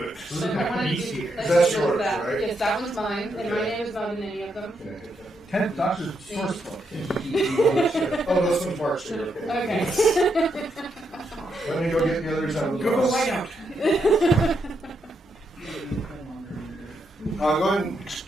it. Those So are I kind of wanted to easy. do, let's That's do yours, that. right? Yes, that one's mine, and my Okay. name is not in any of them. Can I get 10th Doctor's first book. that? Oh, those some parts here. Okay. Okay. Let me go get the others out of the Go box. away out. Go ahead and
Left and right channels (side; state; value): both; normal; correlation 0.80